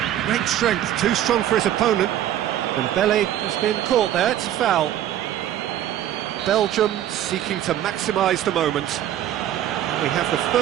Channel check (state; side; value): quieter; left; 11.7 dB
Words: Great strength, too strong for his opponent. Dembele has been caught there, it's a foul. Belgium seeking to maximise the moment. We have the